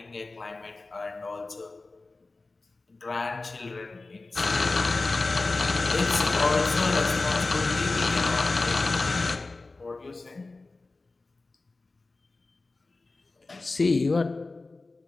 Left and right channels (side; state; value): right; quieter; 3.4 dB